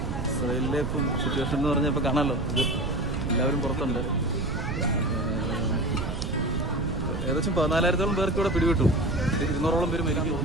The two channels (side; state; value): right; noise; rumble, 3 dB below the sound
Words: ഇസ്രായേലിലെ ഇപ്പം സിറ്റുവേഷൻ എന്ന് പറഞ്ഞാൽ ഇപ്പോൾ കാണാമല്ലോ, ഇത് എല്ലാവരും പുറത്തുണ്ട്. ഏകദേശം 14,000-ഓളം പേർക്ക് ഇവിടെ പിടിവിട്ടു. 200-ഓളം പേര് മരിക്കാൻ